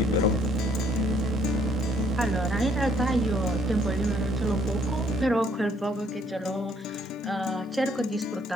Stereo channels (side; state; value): both; normal; correlation 0.65